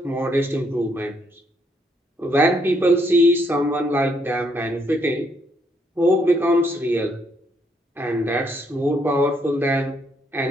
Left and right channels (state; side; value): normal; both; correlation 0.73